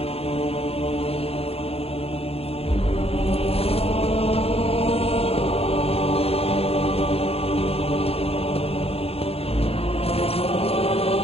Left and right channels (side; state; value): right; late; 0.29 ms